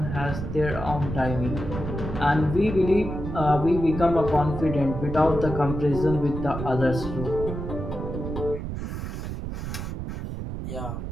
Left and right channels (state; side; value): noise; right; rumble, 6 dB below the sound